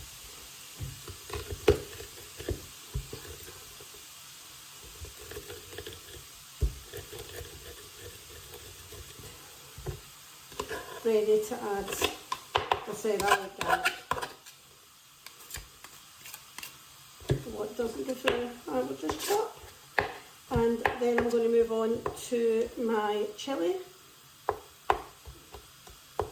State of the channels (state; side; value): identical; both; correlation 1.00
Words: Ready to add, I said I like garlic. What doesn't go through, I will just chop. And then I'm going to move on to my chilli.